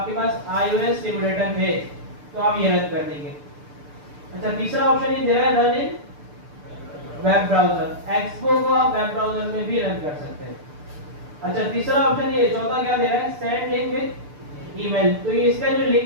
पास iOS सिमुलेटर है तो आप ये रन कर देंगे। अच्छा, तीसरा ऑप्शन ये दे रहा है run in web browser. Expo को आप वेब ब्राउजर में भी रन कर सकते हैं। अच्छा, तीसरा ऑप्शन ये, चौथा क्या दे रहा है सेंड लिंक विद ईमेल, तो ये इसका जो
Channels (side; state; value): left; late; 6.8 ms